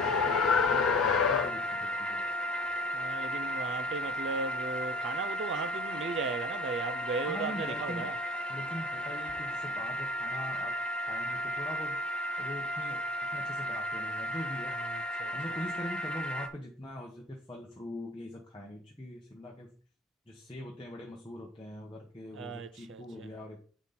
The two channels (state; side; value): normal; both; correlation 0.45